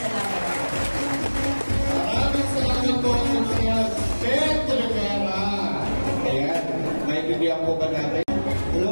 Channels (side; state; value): both; inverted; correlation -1.00